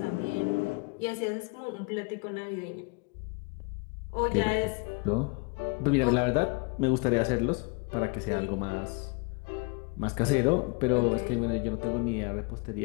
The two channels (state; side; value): quieter; right; 30.6 dB